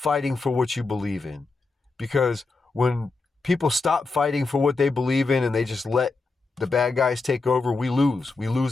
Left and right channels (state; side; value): quieter; right; 3.8 dB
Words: for what you believe in. Because when people stop fighting for what they believe in and they just let the bad guys take over, we lose. We